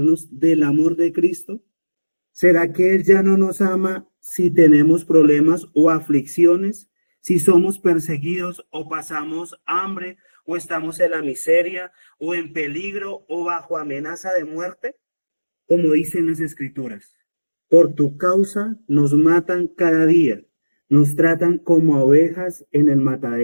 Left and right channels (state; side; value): inverted; both; correlation -1.00